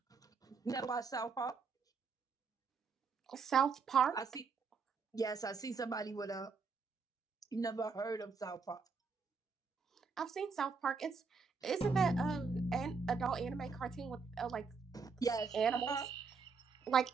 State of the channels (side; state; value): left; quieter; 5.0 dB